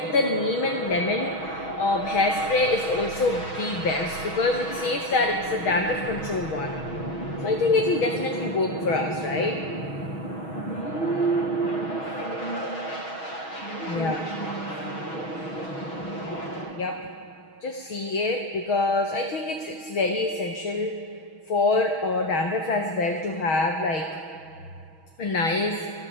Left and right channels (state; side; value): late; right; 6.3 ms